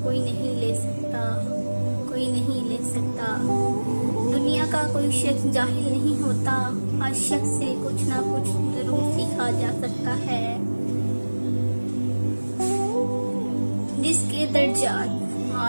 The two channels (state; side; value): inverted; both; correlation -1.00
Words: कोई नहीं ले सकता, कोई नहीं ले सकता। दुनिया का कोई शख्स जाहिल नहीं होता, हर शख्स से कुछ ना कुछ जरूर सीखा जा सकता है। जिसके दर्जात